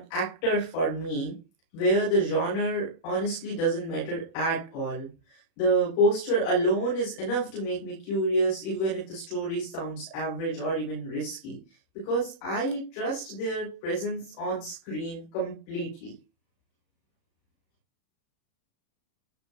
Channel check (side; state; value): right; late; 36 ms